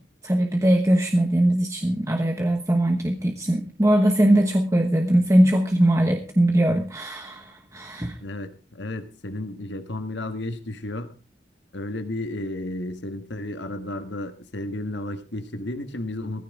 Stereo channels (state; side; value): normal; both; correlation 0.92